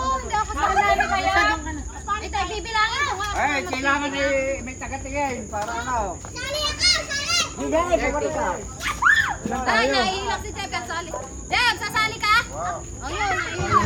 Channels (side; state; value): both; identical; correlation 1.00